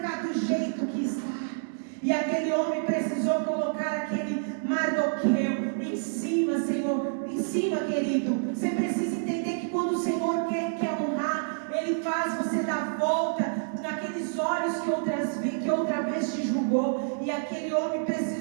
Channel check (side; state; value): left; silent; digital silence